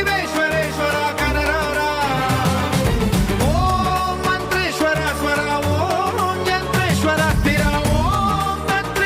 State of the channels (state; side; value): identical; both; correlation 1.00